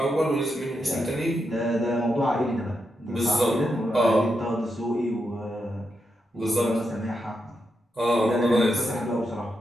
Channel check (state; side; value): normal; both; correlation 0.84